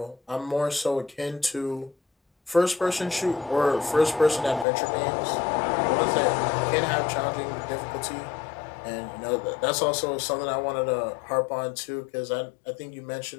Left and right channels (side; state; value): right; drops out; at 4.7 s